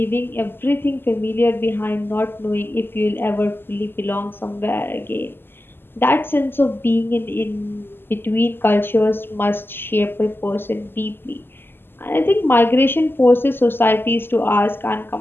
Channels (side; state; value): right; late; 0.10 ms